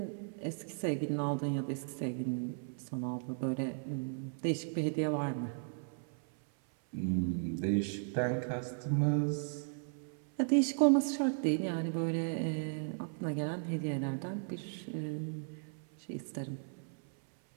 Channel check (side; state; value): left; silent; 54 dB below the other